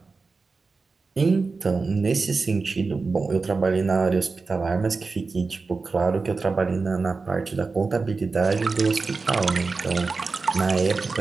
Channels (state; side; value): quieter; left; 4.2 dB